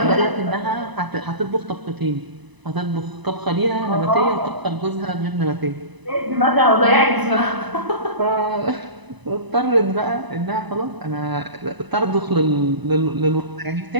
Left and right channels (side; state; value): left; late; 1.0 ms